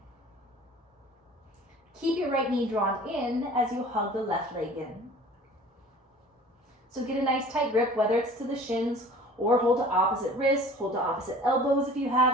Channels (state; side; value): normal; both; correlation 0.46